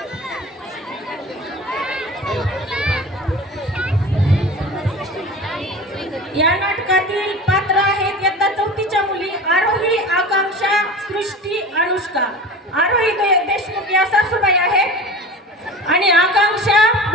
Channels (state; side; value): normal; both; correlation 0.36